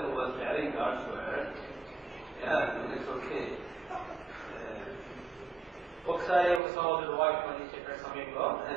was carrying God's word, it's okay. ఒకసారి ఒక సహోదరుడు వాక్యం అందించే సమయంలో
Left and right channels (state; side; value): drops out; left; at 6.6 s